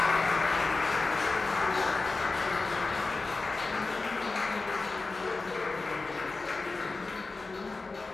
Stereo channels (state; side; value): quieter; right; 3.7 dB